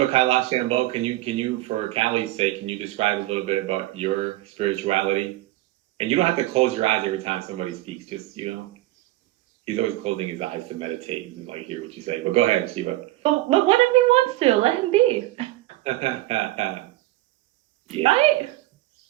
Kailash Shambho, can you for Callie's sake, can you describe a little bit about your spirituality? And you don't have to close your eyes every time somebody speaks. Just he's always closing his eyes to meditate and like hear what you say. But go ahead, Shiva. But what if he wants to? Let him be. Yeah, Right?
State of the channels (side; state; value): left; quieter; 17.1 dB